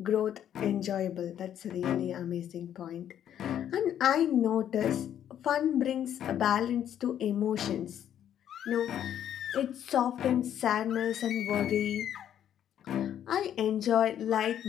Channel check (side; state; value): right; quieter; 10.2 dB